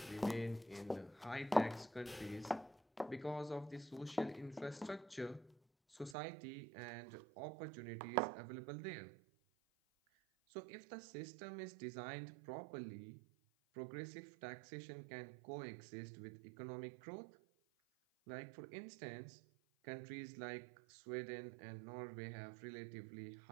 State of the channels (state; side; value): drops out; left; at 6.2 s